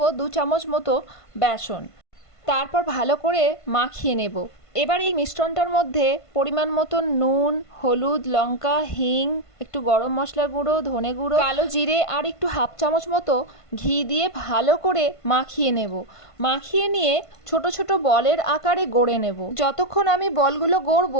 2 চামচ মতো বেসন। তারপর ভালো করে মাখিয়ে নেব। এবার এই মিশ্রণটার মধ্যে পরিমাণ মতো নুন, হলুদ, লঙ্কা, হিং, একটু গরম মশলা গুঁড়ো, ধনে গুঁড়ো, কালো জিরে আর একটু 1/2 চামচ মতো ঘি দিয়ে ভালো করে মাখিয়ে নেব। মাখিয়ে নিয়ে ছোট ছোট বলের আকারে গড়ে নেব। যতক্ষণ আমি বলগুলো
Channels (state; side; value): late; right; 1.5 ms